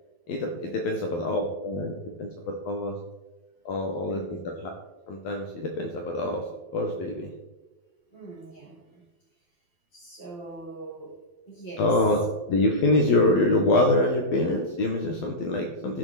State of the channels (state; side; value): late; right; 12 ms